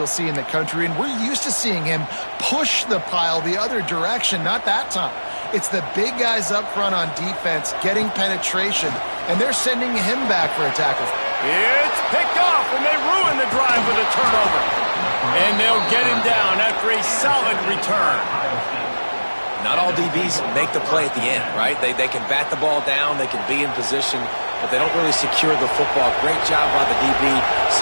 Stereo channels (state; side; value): inverted; both; correlation -1.00